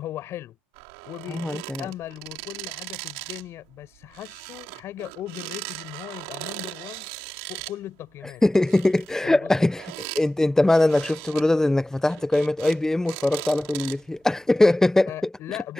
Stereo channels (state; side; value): normal; both; correlation 0.95